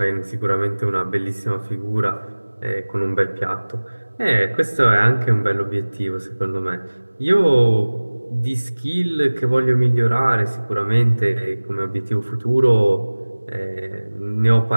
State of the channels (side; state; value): both; inverted; correlation -1.00